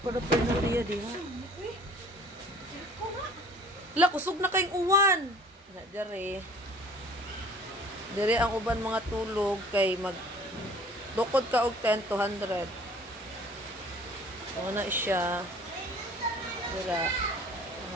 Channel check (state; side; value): normal; both; correlation 0.50